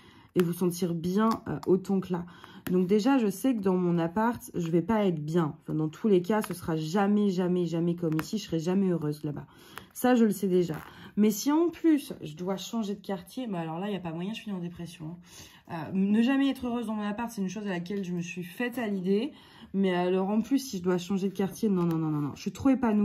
et vous sentir bien autant que là. Donc déjà, je sais que dans mon appart, je vais pas être bien. Enfin, dans tous les cas, ce sera jamais, jamais, jamais comme ici. Je serai jamais heureuse là-bas. Ça, je le sais déjà. Mais si en plus, je dois changer de quartier, bah alors là, il n'y a pas moyen, je suis en dépression. Ne jamais être heureuse dans mon appart, c'est une chose à laquelle je me suis faite à l'idée. Mais alors en plus, si je dois changer de quartier, non, non, non, non, non. Je suis trop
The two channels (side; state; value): both; identical; correlation 1.00